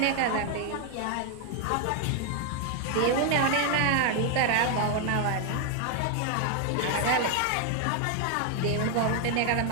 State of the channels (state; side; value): different; both; correlation 0.00